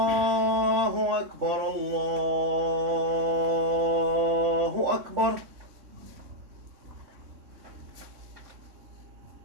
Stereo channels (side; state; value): left; late; 3.6 ms